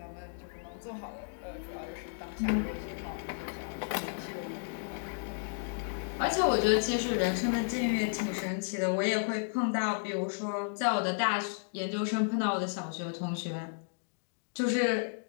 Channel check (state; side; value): silent; right; digital silence